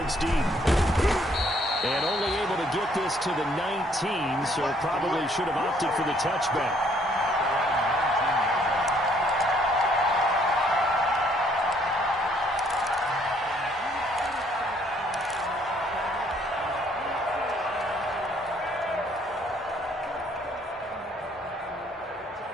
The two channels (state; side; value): normal; both; correlation 0.65